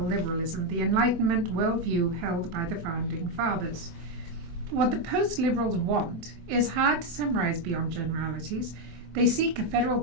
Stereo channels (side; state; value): left; late; 24 ms